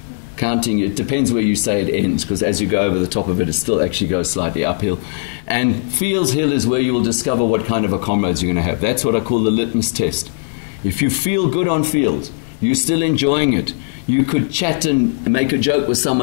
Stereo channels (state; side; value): silent; right; digital silence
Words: Counting, it depends where you say it ends, because as you go over the top of it, it still actually goes slightly uphill. And Fields Hill is where you will discover what kind of a Comrades you're going to have. That's what I call the litmus test. If you feel good on Fields, you're still enjoying it, you could chat and make a joke with